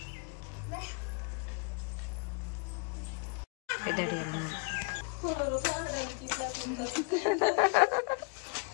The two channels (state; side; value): quieter; right; 38.2 dB